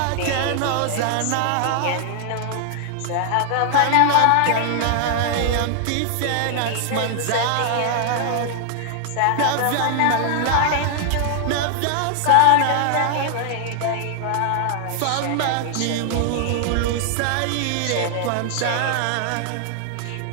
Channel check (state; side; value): different; both; correlation 0.00